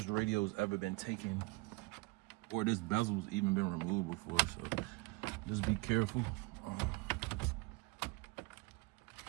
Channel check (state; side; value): quieter; left; 23.4 dB